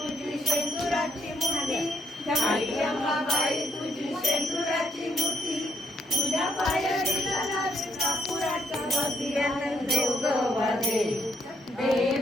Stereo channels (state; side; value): normal; both; correlation 0.71